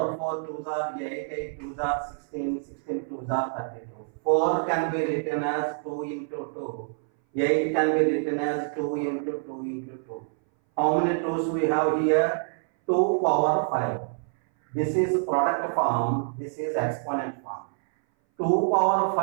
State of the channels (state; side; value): silent; left; 59 dB below the other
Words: 4 2s are 8, 8 2s are 16, 16 2s are 32. 4 can be written as 2 into 2. 8 can be written as 2 into 2 into 2. How many 2s we have here? 2 power 5. This is product form, this is exponent form. 2 power